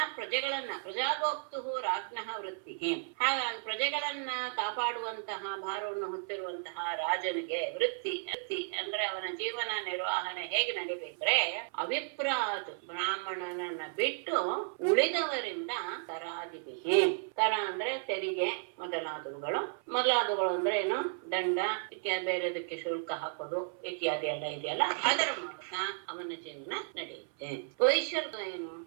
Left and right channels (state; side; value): silent; left; 55 dB below the other